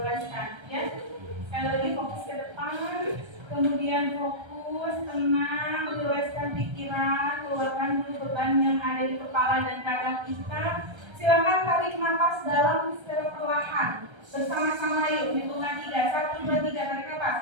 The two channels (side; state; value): left; late; 1.3 ms